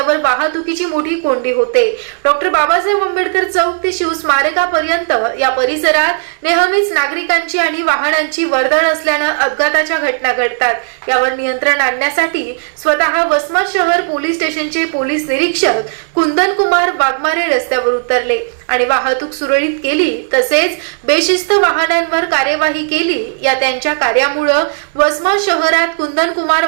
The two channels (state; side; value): silent; left; 71 dB below the other